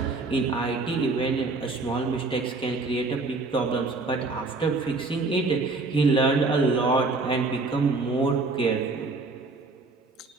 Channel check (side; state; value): left; quieter; 3.6 dB